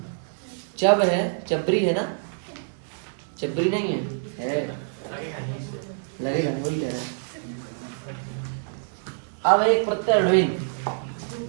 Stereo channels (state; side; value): silent; left; 61 dB below the other